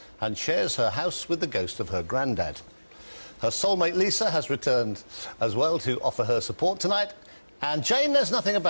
and shares her house with the ghost of her granddad. Her soulmate Lisa has returned as well to offer her support tonight. And Jane knows nothing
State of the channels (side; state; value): both; inverted; correlation -1.00